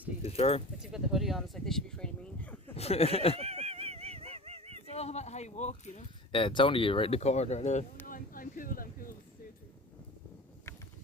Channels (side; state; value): both; normal; correlation 0.35